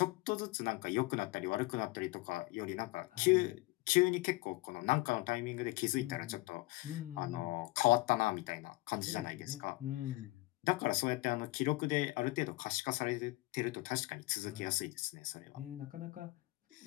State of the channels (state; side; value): quieter; right; 21.5 dB